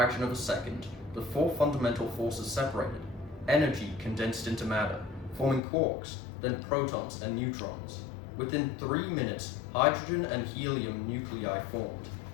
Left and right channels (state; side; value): drops out; right; at 5.6 s